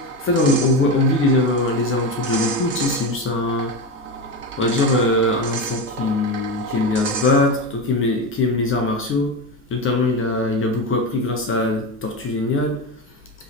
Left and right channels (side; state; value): both; normal; correlation 0.18